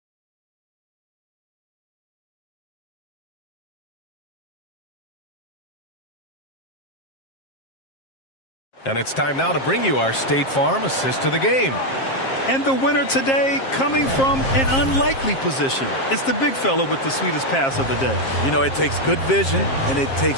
And it's time now to bring you our State Farm assist to the game. And the winner today coming from an unlikely position. It's the big fella with the sweetest pass of the day. You know, it takes good vision and it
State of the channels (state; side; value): late; right; 7.5 ms